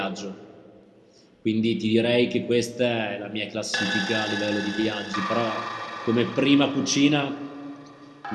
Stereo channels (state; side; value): identical; both; correlation 1.00